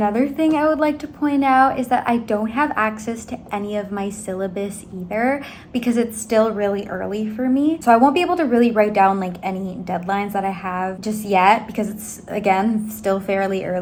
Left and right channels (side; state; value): both; identical; correlation 1.00